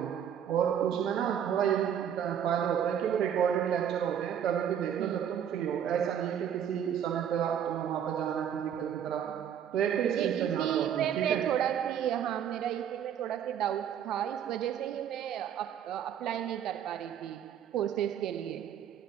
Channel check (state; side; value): quieter; left; 9.1 dB